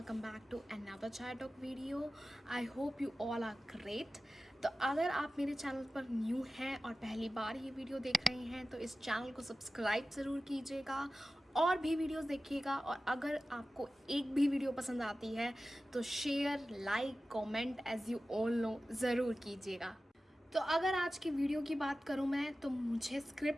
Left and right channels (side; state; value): both; normal; correlation 0.95